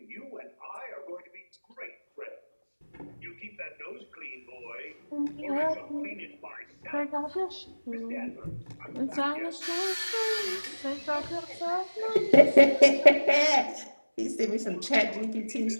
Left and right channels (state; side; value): inverted; both; correlation -1.00